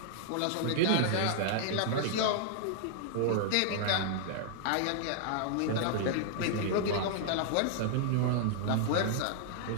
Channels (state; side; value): different; both; correlation -0.01